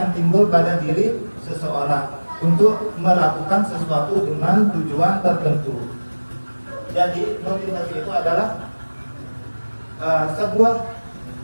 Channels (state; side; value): inverted; both; correlation -1.00